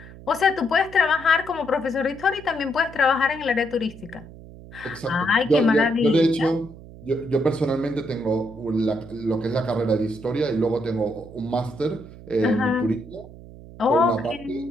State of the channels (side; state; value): right; noise; hum, 17 dB below the sound